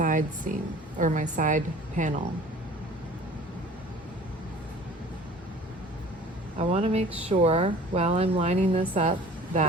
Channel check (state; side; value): normal; both; correlation 0.46